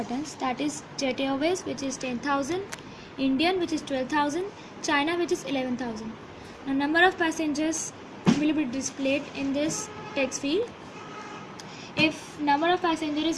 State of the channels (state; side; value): identical; both; correlation 1.00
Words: that is Jet Airways, which is 10,000, Indian, which is 12,000, China, which is 11,000. Now number of passengers will be displayed in this text field. If number of passengers is